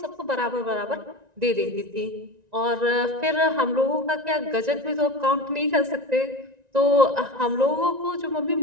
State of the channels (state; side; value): late; left; 1.9 ms